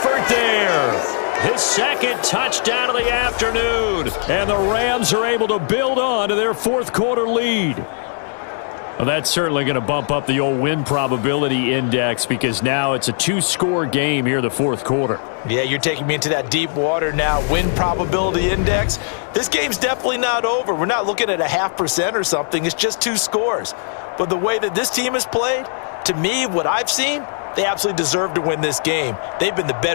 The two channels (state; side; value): silent; right; digital silence